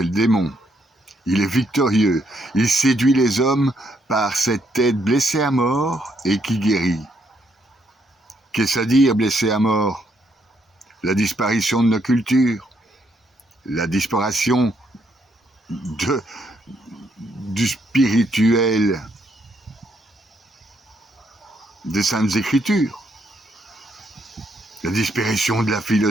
le démon. Il est victorieux. Il séduit les hommes par cette tête blessée à mort et qui guérit. Qu'est-ce à dire blessé à mort? La disparition de nos cultures, la disparition du spirituel des Saintes Écritures, la disparition de la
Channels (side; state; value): both; normal; correlation 0.74